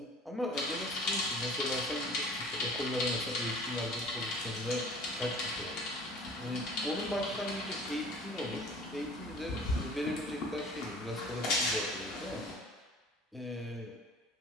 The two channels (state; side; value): normal; both; correlation 0.47